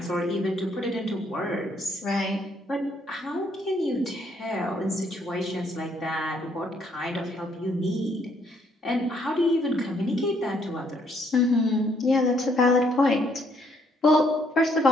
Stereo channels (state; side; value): normal; both; correlation 0.69